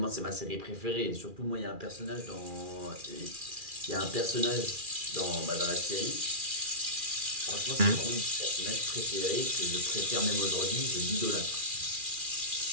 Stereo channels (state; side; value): late; left; 2.4 ms